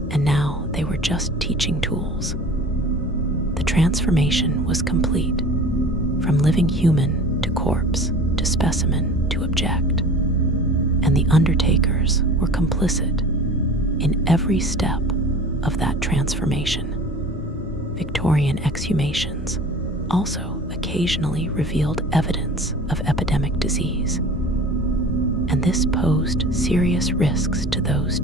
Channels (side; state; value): both; normal; correlation 0.41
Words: and now they were just teaching tools. The transformation was complete, from living human to corpse to specimen to object, and the undertakers were complicit in every step of that transformation. Victorian exhumations also occasionally revealed evidence of epidemic disease, and this posed serious risks to those